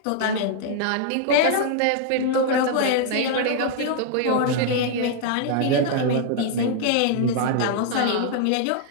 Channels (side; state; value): both; different; correlation -0.01